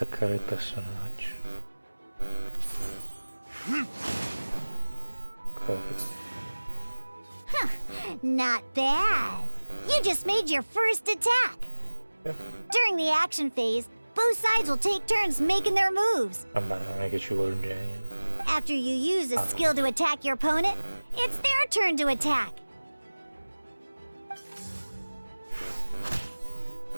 il personaggio. Not bad. You just made your first attack. Yeah. During the action phase, both sides will take turns making their moves. Vabbè, non è che ci vuole un genio. After you use a skill to attack your opponent, it's their turn to attack.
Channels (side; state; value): both; inverted; correlation -1.00